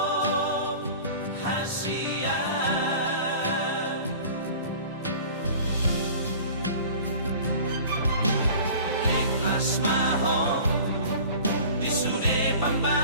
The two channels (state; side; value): inverted; both; correlation -0.43